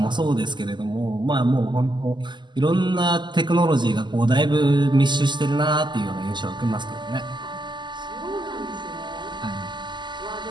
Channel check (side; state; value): left; late; 0.22 ms